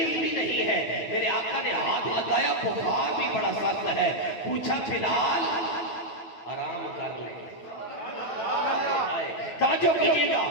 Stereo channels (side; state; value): right; late; 9.3 ms